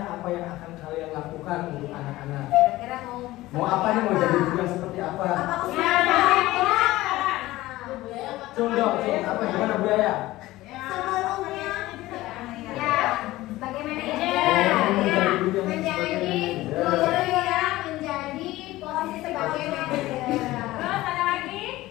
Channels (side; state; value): right; quieter; 17.5 dB